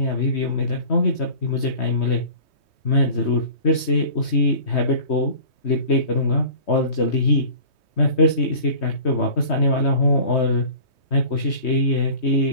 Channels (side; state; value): right; late; 3.2 ms